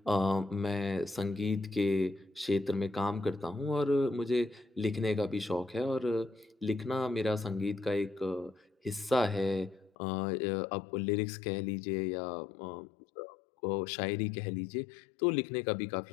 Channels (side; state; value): right; drops out; at 9.9 s